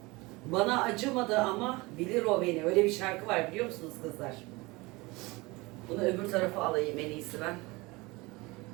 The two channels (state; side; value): quieter; left; 23.4 dB